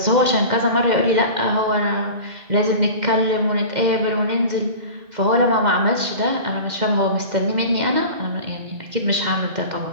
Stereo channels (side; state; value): left; late; 2.1 ms